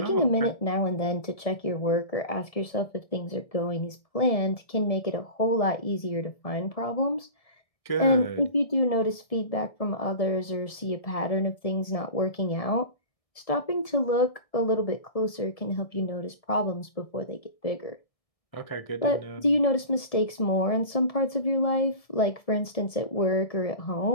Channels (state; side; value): late; right; 1.7 ms